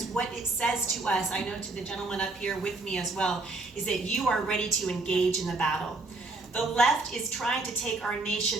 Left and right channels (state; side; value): quieter; left; 3.3 dB